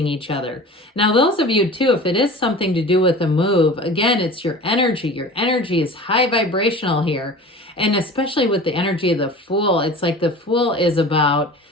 each other. Now, those of you too, if it is something to do with a move, again, it's your energy. Your energy is high vibrational here. And especially with the energy of the Fool, it's like the Fool is about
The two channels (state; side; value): normal; both; correlation 0.39